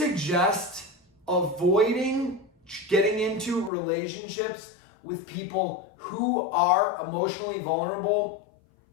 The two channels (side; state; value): right; drops out; at 3.7 s